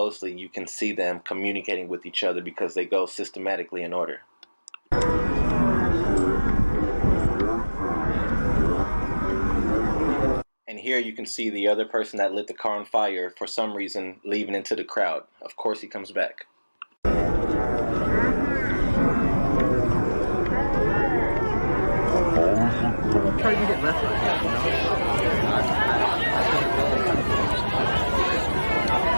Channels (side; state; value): both; inverted; correlation -1.00